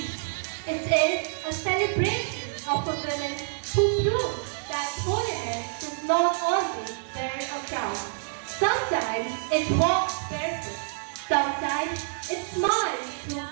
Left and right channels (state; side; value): silent; left; digital silence